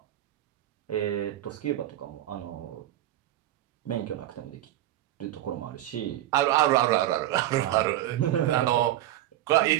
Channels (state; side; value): quieter; left; 13.6 dB